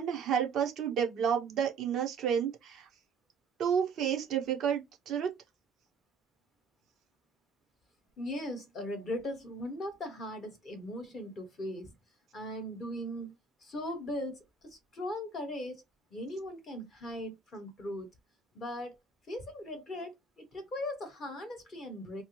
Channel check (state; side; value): quieter; left; 4.7 dB